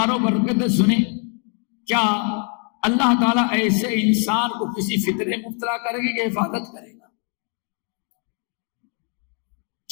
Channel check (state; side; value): quieter; right; 39.8 dB